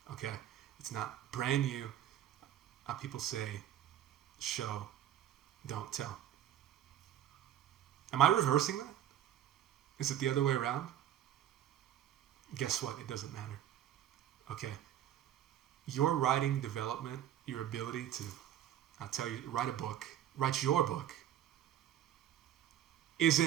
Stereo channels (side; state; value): left; quieter; 11.3 dB